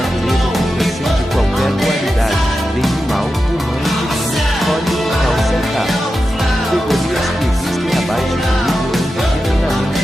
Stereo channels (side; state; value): both; normal; correlation 0.91